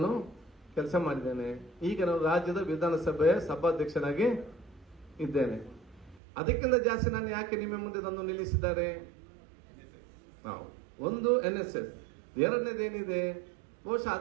ಕೆಲಸ ಮಾಡಿದ್ದೇನೆ. ಈಗ ನಾನು ರಾಜ್ಯದ ವಿಧಾನಸಭೆಯ ಸಭಾಧ್ಯಕ್ಷನಾಗಿ ಇದ್ದೇನೆ. ಅದಕ್ಕಿಂತ ಜಾಸ್ತಿ ನಾನು ಯಾಕೆ ನಿಮ್ಮ ಮುಂದೆ ತಂದು ನಿಲ್ಲಿಸಿದ್ದಾರೆ? ಒಂದು NSS, ಎರಡನೇದೇನಿದೆ, ಬಹುಶಃ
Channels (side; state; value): left; drops out; at 6.2 s